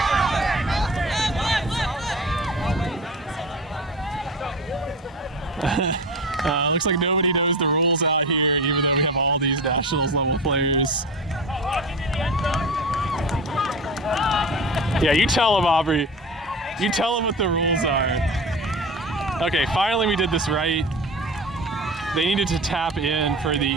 Looks like nobody knows the rules out here, even though we have all these nationals level players. Yeah, you tell them, Aubrey. You tell them what the rules are. Okay, finally we did this right. They needed to tap in for the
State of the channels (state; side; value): normal; both; correlation 0.31